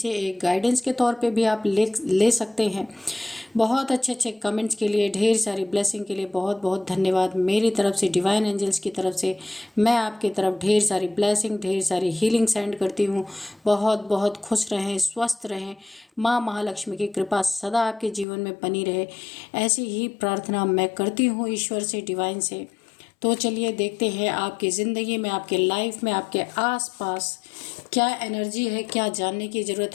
एक गाइडेंस के तौर पे भी आप ले सकते हैं। बहुत अच्छे अच्छे कमेंट्स के लिए, ढेर सारी ब्लेसिंग के लिए बहुत बहुत धन्यवाद। मेरी तरफ से, डिवाइन एंजल्स की तरफ से मैं आपकी तरफ ढेर सारी ब्लेसिंग, ढेर सारी हीलिंग सेंड करती हूँ। बहुत बहुत खुश रहें, स्वस्थ रहें। माँ महालक्ष्मी की कृपा सदा आपके जीवन में बनी रहे, ऐसी ही प्रार्थना मैं करती हूँ ईश्वर से, डिवाइन से। तो चलिए देखते हैं आपकी ज़िंदगी में, आपके लाइफ में, आपके आसपास क्या एनर्जी है, क्या जानने की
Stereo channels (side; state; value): right; drops out; at 18.2 s